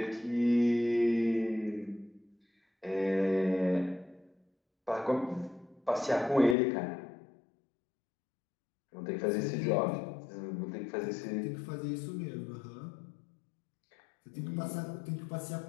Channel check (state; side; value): drops out; right; at 6.6 s